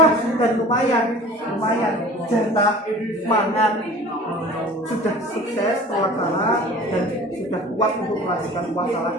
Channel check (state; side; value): normal; both; correlation 0.43